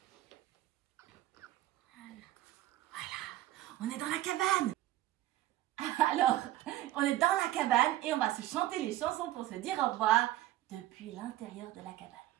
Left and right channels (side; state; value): left; quieter; 15.0 dB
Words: Voilà, on est dans la cabane. Alors, on est dans la cabane et on va se chanter les chansons pour se dire au revoir depuis l'intérieur de la cabane.